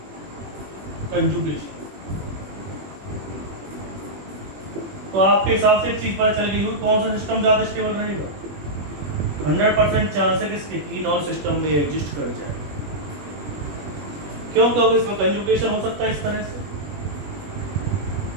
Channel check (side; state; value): left; late; 21 ms